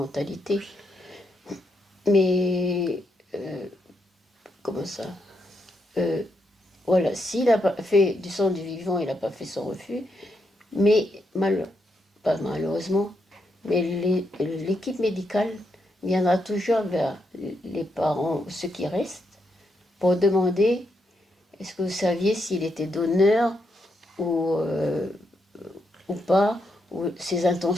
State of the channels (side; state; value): both; normal; correlation 0.80